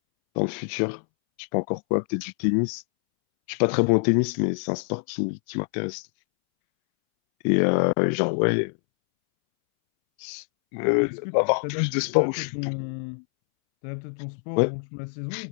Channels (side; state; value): right; silent; 62 dB below the other